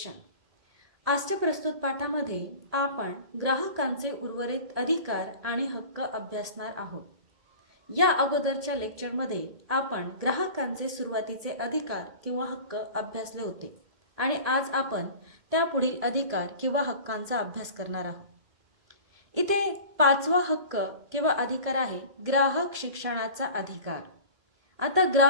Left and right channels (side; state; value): left; late; 2.1 ms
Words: आजच्या प्रस्तुत पाठामध्ये आपण ग्राहकांचे उर्वरित अधिकार आणि हक्क अभ्यासणार आहोत. या अगोदरच्या लेक्चरमध्ये आपण ग्राहकांचे सुरुवातीचे अधिकार किंवा हक्क अभ्यासले होते आणि आज आपण त्यापुढील अधिकार किंवा हक्कांचा अभ्यास करणार आहोत. इथे 5वा हक्क किंवा अधिकार आहे ग्राहक शिक्षणाचा अधिकार. आता